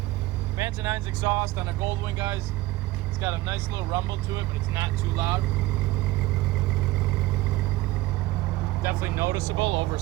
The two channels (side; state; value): left; quieter; 18.2 dB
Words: Vance & Hines exhaust on a Goldwing, guys. It's got a nice little rumble to it, but it's not too loud. Definitely noticeable over